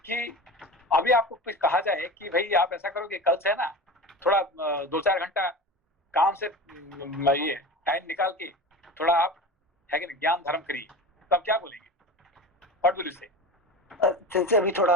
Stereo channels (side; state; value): both; normal; correlation 0.30